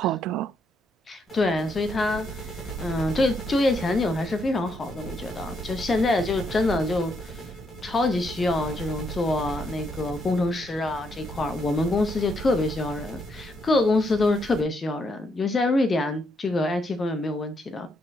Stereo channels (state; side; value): normal; both; correlation 0.76